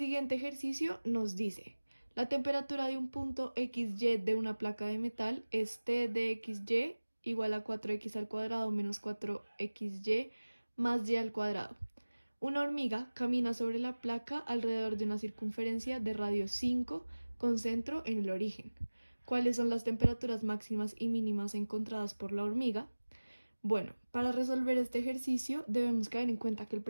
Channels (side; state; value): both; inverted; correlation -1.00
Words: ejercicio nos dice: la temperatura de un punto XY de una placa de metal es T de XY igual a 4x al cuadrado menos 4xy más y al cuadrado. Una hormiga camina sobre la placa alrededor de una circunferencia de radio 5 con centro en el origen. ¿Cuáles son las temperaturas máximas y mínimas encontradas por la hormiga? Bueno, para resolver este ejercicio debemos caer en cuenta que el